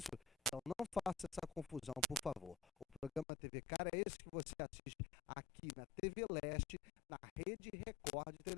Então, não faça essa confusão, por favor. O programa TVK é esse que você assiste aqui na TV Leste, na Rede Record de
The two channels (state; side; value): drops out; right; at 3.2 s